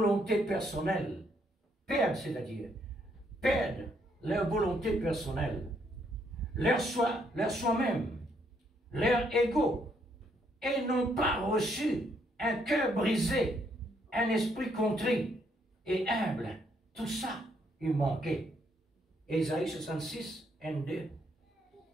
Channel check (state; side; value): normal; both; correlation 0.72